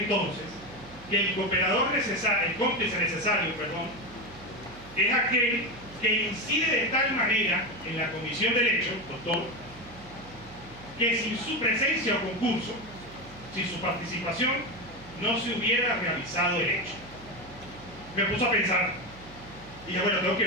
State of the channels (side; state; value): right; noise; hum, 20 dB below the sound